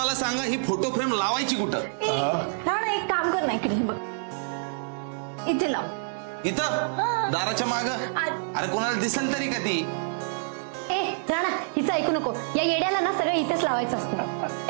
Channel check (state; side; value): silent; left; 60 dB below the other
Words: सांगा, ही फोटो फ्रेम लावायची कुठं? राणा, एक काम कर ना, इकडे बघ, इथे लाव. इथं दाराच्या माग? अरे कोणाला दिसेल तरी का ती? ए राणा, हिचं ऐकू नको. या येड्याला ना सगळं इथेच लावायचं असतं.